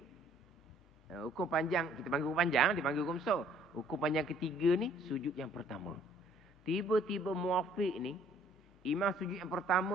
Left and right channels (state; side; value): normal; both; correlation 0.59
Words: hukum panjang, kita panggil hukum panjang, dipanggil hukum besar. Hukum panjang ketiga ni, sujud yang pertama. Tiba-tiba muafiq ni, imam sujud yang